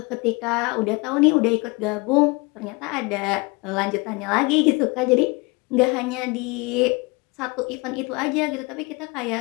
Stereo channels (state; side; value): quieter; right; 26.8 dB